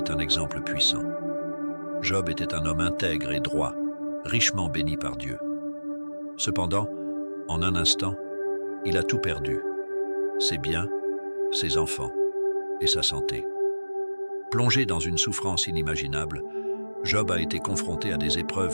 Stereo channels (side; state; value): both; inverted; correlation -1.00